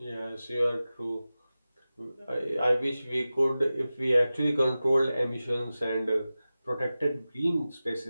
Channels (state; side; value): inverted; both; correlation -0.95